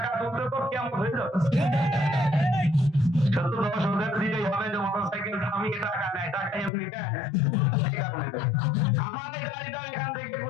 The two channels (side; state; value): right; drops out; at 6.7 s